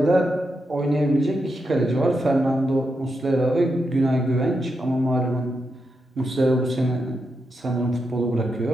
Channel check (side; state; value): both; normal; correlation 0.85